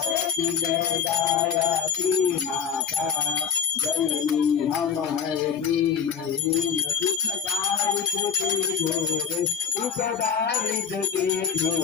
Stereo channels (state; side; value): quieter; right; 7.2 dB